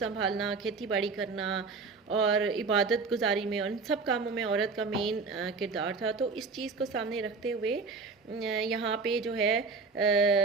खेती बाड़ी करना और इबादत गुजारी में और इन सब कामों में औरत का मेन किरदार था। तो इस चीज़ को सामने रखते हुए यहाँ पे जो है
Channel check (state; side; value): quieter; left; 4.4 dB